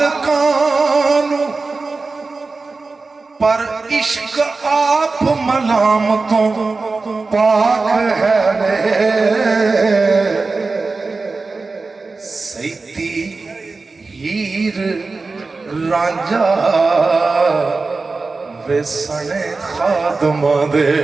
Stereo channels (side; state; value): left; quieter; 3.9 dB